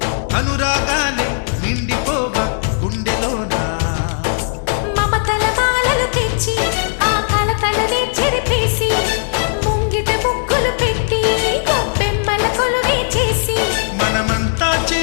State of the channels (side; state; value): right; silent; 65 dB below the other